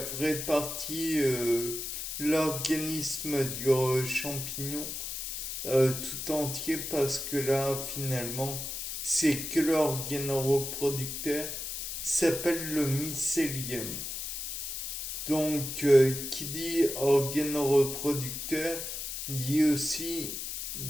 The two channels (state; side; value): noise; left; hiss, 5 dB below the sound